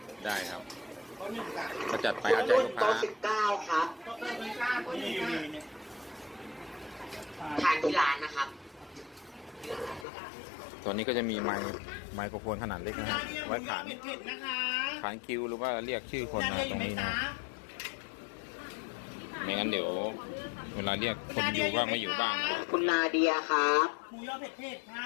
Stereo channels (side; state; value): right; drops out; at 10.1 s